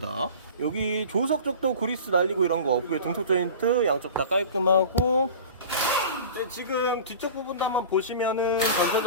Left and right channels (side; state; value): both; inverted; correlation -0.38